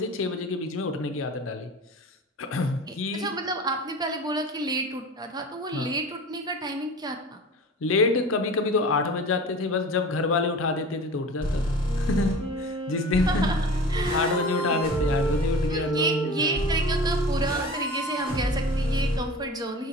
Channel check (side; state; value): both; normal; correlation 0.37